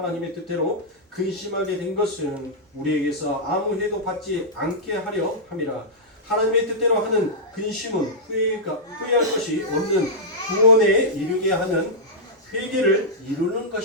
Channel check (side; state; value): both; normal; correlation -0.10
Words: 뜻대로 근심하게 된 것은 우리에게서 아무 해도 받지 않게 하려 함이라. 하나님의 뜻대로 하는 근심은 후회할 것이 없는 구원에 이르게 하는 회개를 이루는